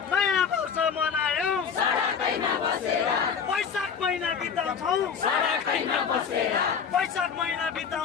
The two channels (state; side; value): quieter; right; 6.7 dB